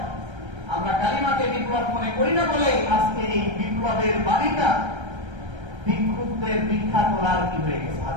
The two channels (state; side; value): late; left; 1.3 ms